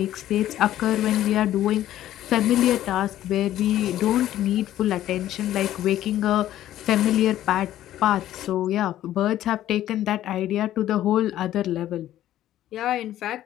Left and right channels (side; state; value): right; quieter; 13.0 dB